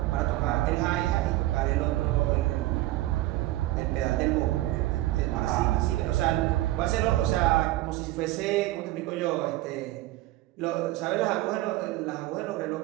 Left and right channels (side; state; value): left; quieter; 16.9 dB